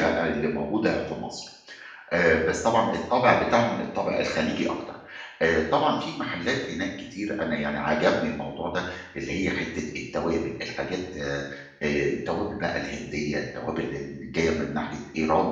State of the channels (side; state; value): both; identical; correlation 1.00